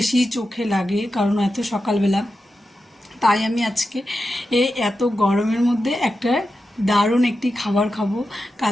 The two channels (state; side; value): normal; both; correlation 0.90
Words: চোখে লাগে, কারণ এত সকালবেলা। তাই আমি আজকে এত গরমের মধ্যে একটা দারুণ একটি খাবার খাবো।